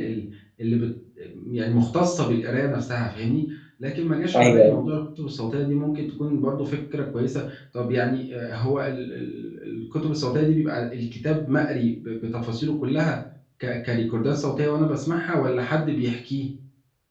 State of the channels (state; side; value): identical; both; correlation 1.00